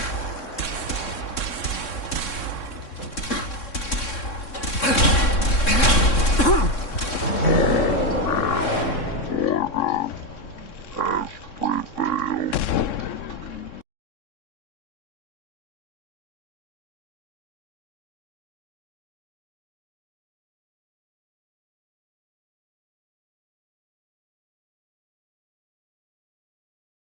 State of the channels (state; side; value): late; right; 3.6 ms